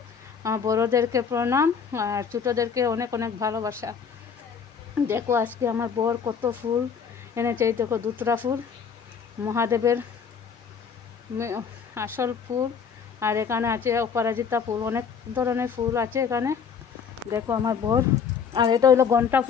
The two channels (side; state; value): right; quieter; 6.6 dB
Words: বড়োদেরকে প্রণাম আর ছোটোদেরকে অনেক অনেক ভালোবাসা। দেখো আজকে আমার বর কত ফুল এনেছে। এই দেখো দুতরা ফুল, মহাদেবের আসল ফুল। আর এখানে আছে অপরাজিতা ফুল, অনেক ধরনের ফুল আছে এখানে। দেখো আমার বর। আর এটা হলো ঘন্টা